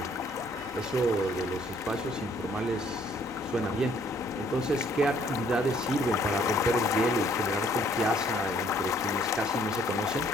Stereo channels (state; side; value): normal; both; correlation 0.63